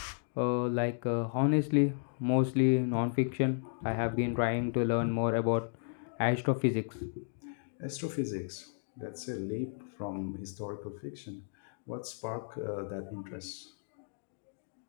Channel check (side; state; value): right; silent; digital silence